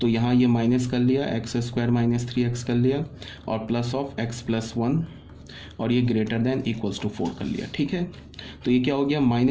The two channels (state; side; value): identical; both; correlation 1.00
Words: तो यहाँ ये माइनस कर लिया, x² माइनस 3x कर लिया और प्लस ऑफ x प्लस 1 और ये ग्रेटर देन इक्वल्स टू 4 कर लिया। ठीक है, तो ये क्या हो गया,